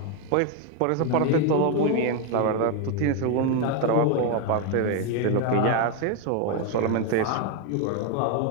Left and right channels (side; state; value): both; different; correlation 0.01